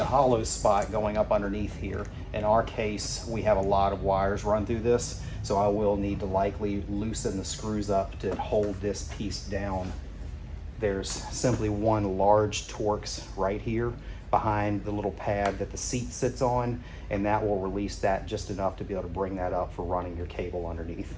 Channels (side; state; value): both; identical; correlation 1.00